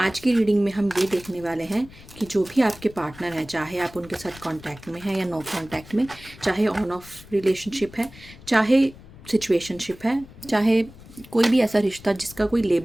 की रीडिंग में हम ये देखने वाले हैं कि जो भी आपके पार्टनर हैं, चाहे आप उनके साथ कांटेक्ट में हैं या नो कांटेक्ट में, चाहे ऑन ऑफ रिलेशनशिप है, चाहे सिचुएशनशिप है, चाहे कोई भी ऐसा रिश्ता जिसका कोई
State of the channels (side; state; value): left; noise; rumble, 20 dB below the sound